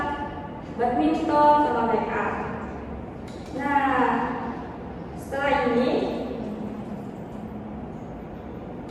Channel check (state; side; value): identical; both; correlation 1.00